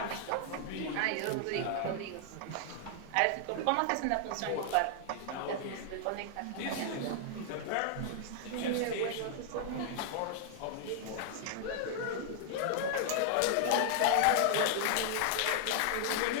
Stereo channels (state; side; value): different; both; correlation 0.00